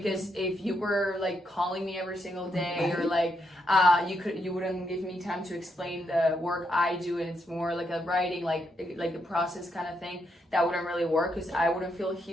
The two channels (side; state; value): both; normal; correlation 0.80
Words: if you were like calling me every single day or like you wouldn't give me time to explain the work I do, and it's more like a writing like a process kind of thing, that wouldn't really work, because I wouldn't feel